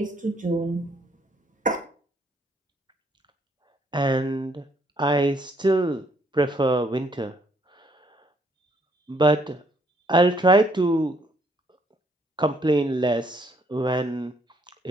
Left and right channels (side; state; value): both; normal; correlation 0.68